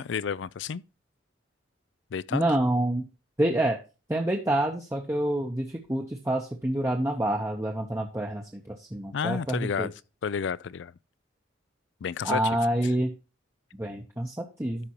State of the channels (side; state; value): both; normal; correlation 0.72